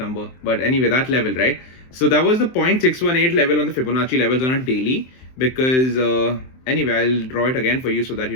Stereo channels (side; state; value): right; late; 23 ms